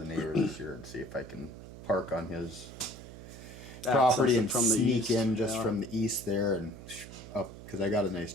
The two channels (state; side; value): noise; right; hum, 14 dB below the sound